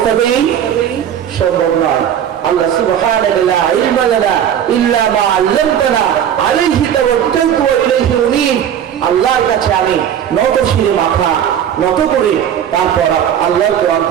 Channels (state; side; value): quieter; left; 9.5 dB